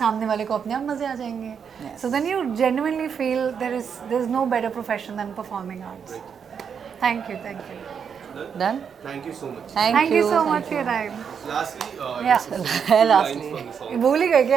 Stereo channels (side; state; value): left; quieter; 7.0 dB